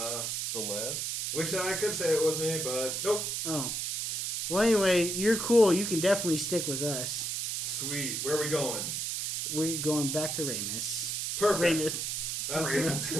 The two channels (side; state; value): right; noise; hiss, 2 dB below the sound